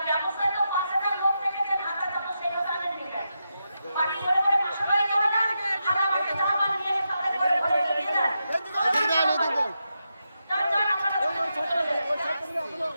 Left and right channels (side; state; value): both; inverted; correlation -0.87